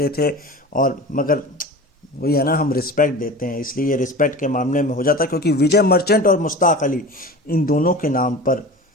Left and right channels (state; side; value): normal; both; correlation 0.34